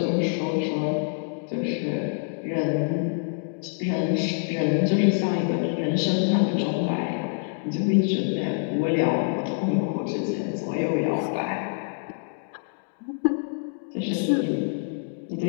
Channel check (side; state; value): right; silent; digital silence